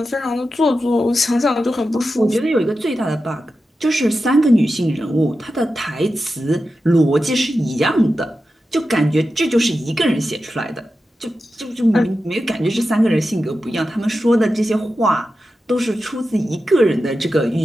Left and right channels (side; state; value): both; normal; correlation 0.91